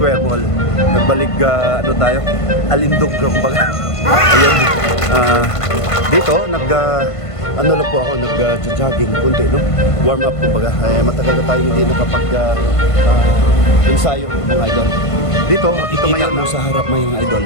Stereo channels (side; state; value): right; late; 1.5 ms